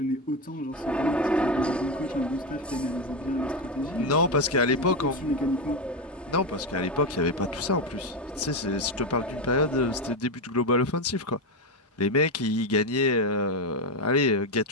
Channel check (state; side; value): normal; both; correlation 0.11